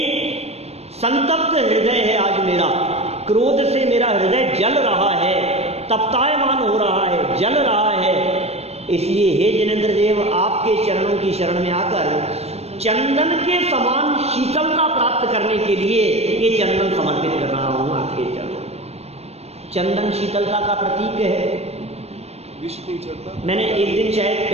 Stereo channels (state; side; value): late; left; 0.31 ms